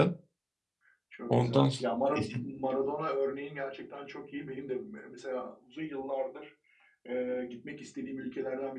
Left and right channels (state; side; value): identical; both; correlation 1.00